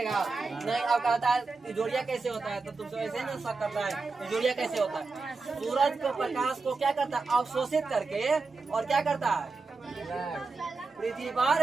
नहीं। अब कहता है जोड़िया कैसे होता है, तो तुमसे ऐसे ना शक करता है जोड़िया कैसे होता है। सूरज को प्रकाश को क्या करता है, अवशोषित करके, और क्या करता है, पृथ्वी पर,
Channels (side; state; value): left; quieter; 4.0 dB